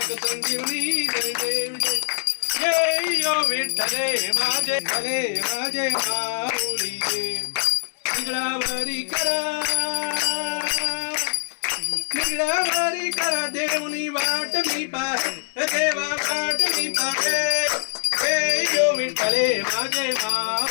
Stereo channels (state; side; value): silent; right; digital silence